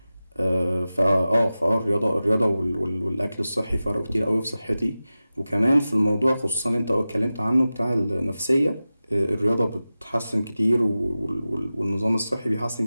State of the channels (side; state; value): both; inverted; correlation -0.95